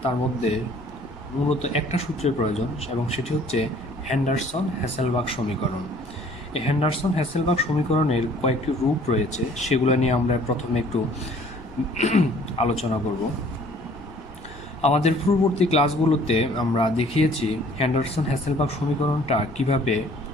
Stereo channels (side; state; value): left; noise; rumble, 22 dB below the sound